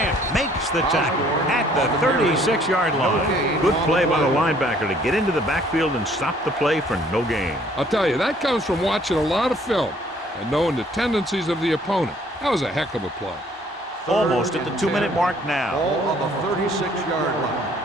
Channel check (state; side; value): normal; both; correlation 0.60